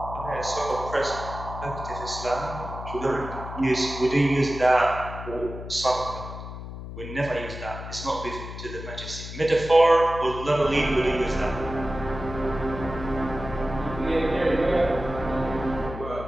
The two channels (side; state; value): left; noise; hum, 10 dB below the sound